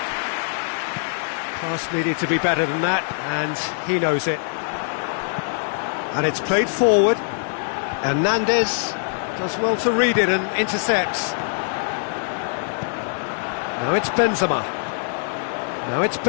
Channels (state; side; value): silent; right; 56 dB below the other